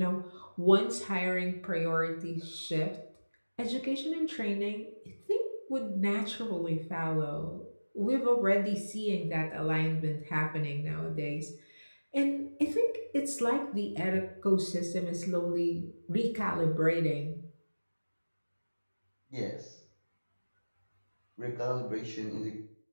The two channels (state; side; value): inverted; both; correlation -1.00